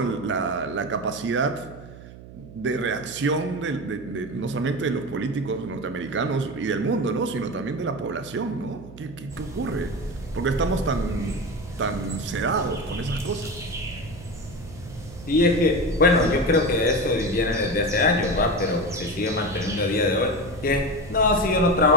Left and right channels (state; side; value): noise; right; hum, 17 dB below the sound